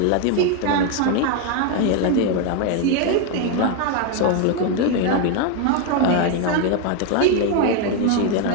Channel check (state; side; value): different; both; correlation 0.01